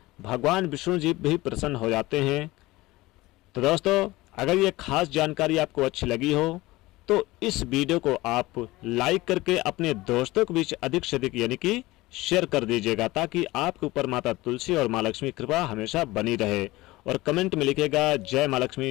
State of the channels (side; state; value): right; quieter; 19.5 dB